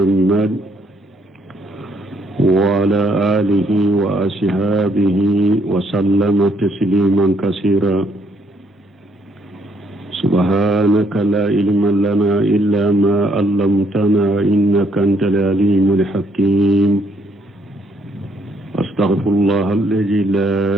وعلى آله وأصحابه وسلم تسليما كثيرا. سبحانك لا علم لنا إلا ما علمتنا إنك أنت العليم الحكيم. أستغفر الله الذي لا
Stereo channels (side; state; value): both; normal; correlation 0.69